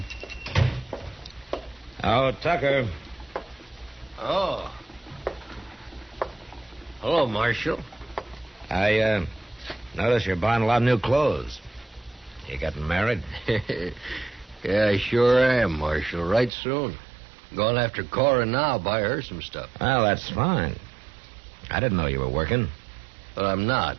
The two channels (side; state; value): left; drops out; at 16.5 s